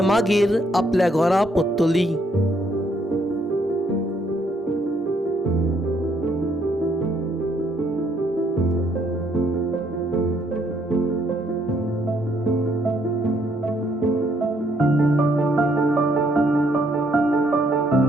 मागीर आपल्या घरा परतली.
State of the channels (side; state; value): both; normal; correlation 0.70